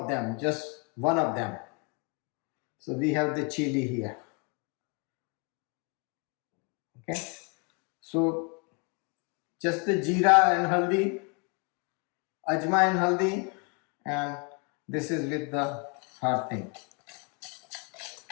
them, just one of them. So we have the chili here. Okay, so just the jeera and haldi, ajma and haldi, and this is with the hard thing.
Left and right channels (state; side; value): quieter; right; 34.2 dB